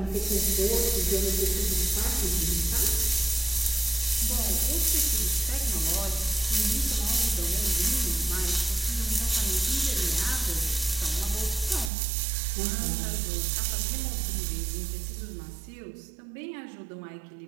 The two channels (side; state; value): left; drops out; at 11.9 s